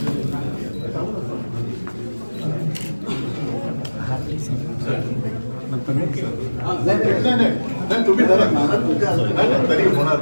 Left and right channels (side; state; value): both; inverted; correlation -1.00